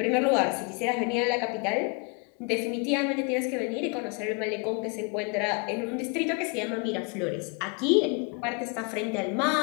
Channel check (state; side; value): quieter; right; 33.6 dB